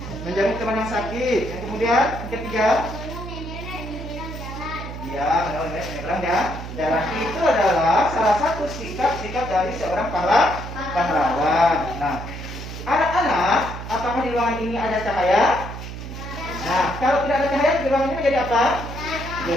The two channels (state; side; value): noise; right; hum, 9 dB below the sound